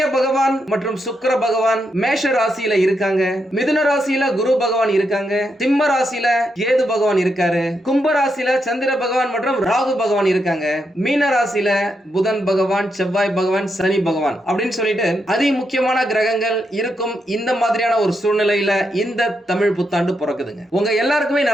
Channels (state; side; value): normal; both; correlation 0.82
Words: பகவான் மற்றும் சுக்கிர பகவான் மேஷ ராசியில இருக்காங்க, மிதுன ராசியில குரு பகவான் இருக்காங்க, சிம்ம ராசியில கேது பகவான் இருக்காரு, கும்ப ராசியில சந்திர பகவான் மற்றும் ராகு பகவான் இருக்காங்க, மீன ராசியில புதன் பகவான், செவ்வாய் பகவான், சனி பகவான் அப்படின்னு சொல்லிட்டு அதி முக்கியமான கிரகங்கள் இருக்கும். இந்த மாதிரியான ஒரு சூழ்நிலையில இந்த தமிழ் புத்தாண்டு பிறக்குதுங்க. உங்க எல்லாருக்குமே